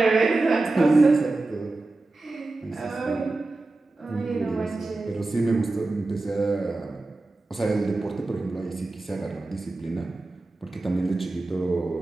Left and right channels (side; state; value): left; quieter; 3.1 dB